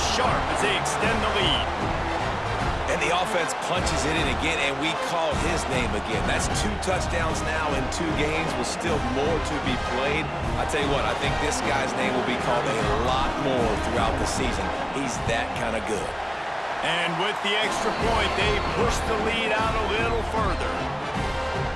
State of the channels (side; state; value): both; identical; correlation 1.00